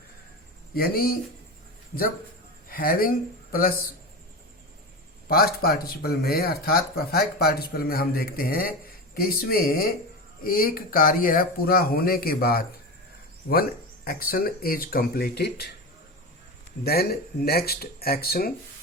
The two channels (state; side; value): normal; both; correlation 0.23